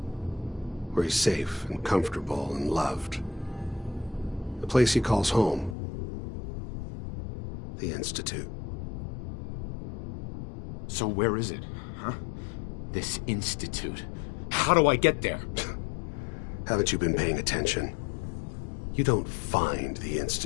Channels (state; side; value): drops out; right; at 5.8 s